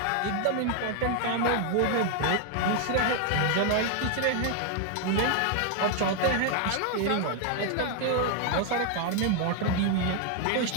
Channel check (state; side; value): different; both; correlation 0.00